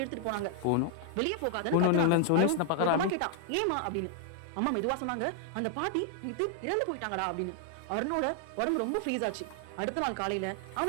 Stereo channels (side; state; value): both; different; correlation 0.00